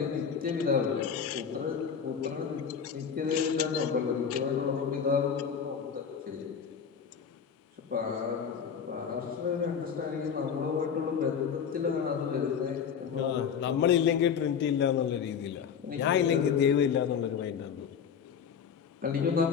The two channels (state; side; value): quieter; right; 7.2 dB